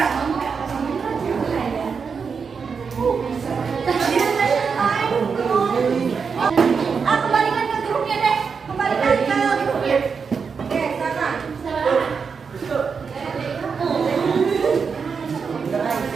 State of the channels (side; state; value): left; quieter; 5.7 dB